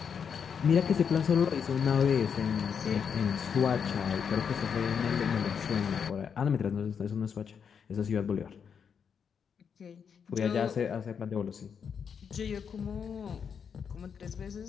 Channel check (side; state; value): right; quieter; 6.9 dB